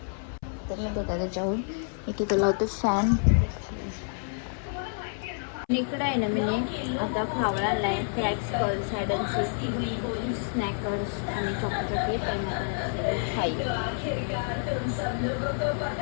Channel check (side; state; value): right; silent; 59 dB below the other